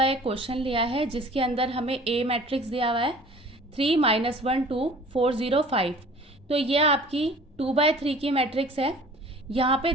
एक क्वेश्चन लिया है जिसके अंदर हमें ए मैट्रिक्स दिया हुआ है 3 - 1 2 4 0 5। तो ये आपकी 2/3 की मैट्रिक्स है। यहाँ पे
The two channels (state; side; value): normal; both; correlation 0.47